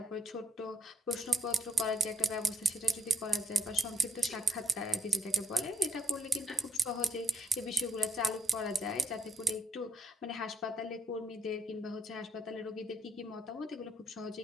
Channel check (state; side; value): normal; both; correlation 0.75